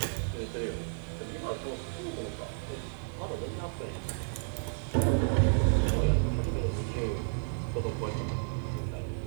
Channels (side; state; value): left; silent; digital silence